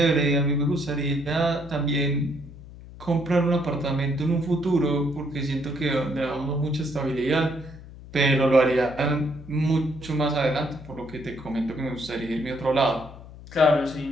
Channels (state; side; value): noise; left; hum, 17 dB below the sound